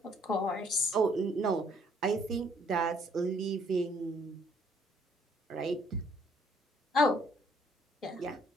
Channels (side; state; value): both; normal; correlation 0.65